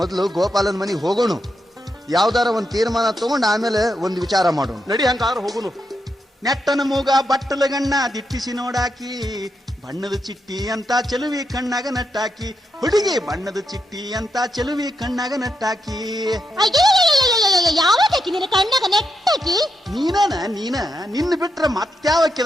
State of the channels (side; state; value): both; normal; correlation 0.83